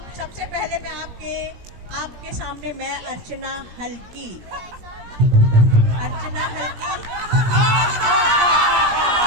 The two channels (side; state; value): left; late; 17 ms